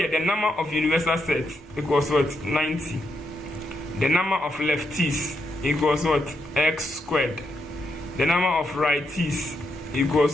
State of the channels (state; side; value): normal; both; correlation 0.80